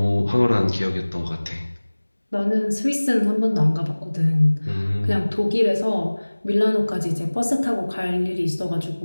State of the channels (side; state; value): both; inverted; correlation -1.00